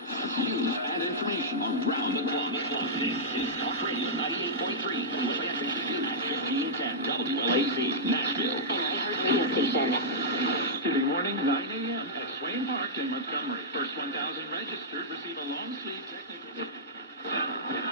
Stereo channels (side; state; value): both; normal; correlation -0.11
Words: News and information around the clock. This is Talk Radio 98.3, WFHQ at 1510 WLAC, Nashville. And I heard radio station. Tuesday morning, 9 a.m. at Swain Park in Montgomery. First 1,000 registered receive a long sleeve technical.